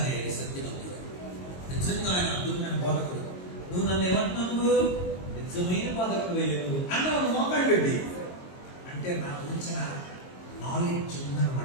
సత్యవంతుడు, నిజంగా ఆయన అద్భుతమైన బోధకుడు. నువ్వు నన్ను ఏమంటున్నావు? నిజమైన బోధకుడు వేయలేదు అన్నావు. మోకాళ్ళు పెట్టి అంటే నా గురించిన నాలెడ్జ్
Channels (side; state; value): right; late; 22 ms